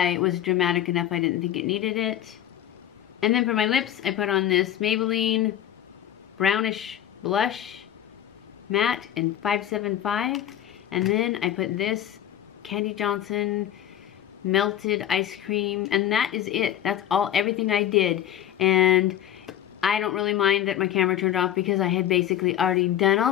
was dramatic enough I didn't think it needed it. And then for my lips, I put on this Maybelline brownish blush, matte in 575, and then I put this Kandee Johnson melted ice cream, and that is it. That's all, everything I did. And I don't really mind that my camera turned off because I had basically already done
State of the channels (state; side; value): quieter; right; 11.2 dB